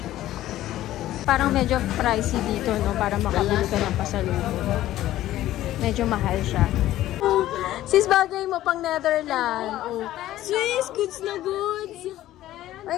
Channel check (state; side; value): quieter; right; 14.2 dB